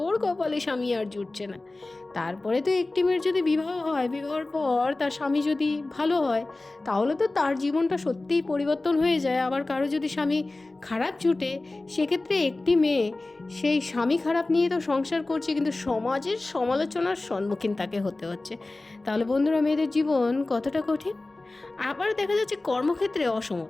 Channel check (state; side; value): quieter; right; 3.0 dB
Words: কপালে স্বামী আর জুটছে না। তারপরে তো একটি মেয়ের যদি বিবাহ হয়, বিবাহের পর তার স্বামী যদি ভালো হয় তাহলে তো তার জীবনটা সত্যিই পরিবর্তন হয়ে যায়। আবার কারো যদি স্বামী খারাপ জুটে, সেক্ষেত্রে একটি মেয়ে সেই স্বামী খারাপ নিয়ে তো সংসার করছে, কিন্তু সমাজের সমালোচনার সম্মুখীন তাকে হতে হচ্ছে। তাহলে বন্ধুরা, মেয়েদের জীবন কতটা কঠিন। আবার দেখা যাচ্ছে কর্মক্ষেত্রে